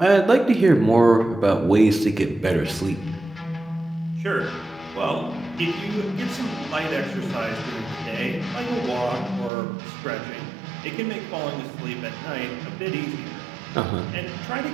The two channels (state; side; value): drops out; left; at 9.5 s